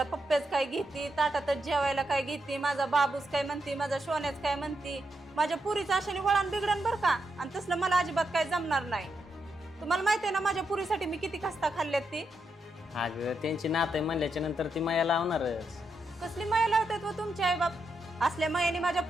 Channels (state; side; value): normal; both; correlation 0.83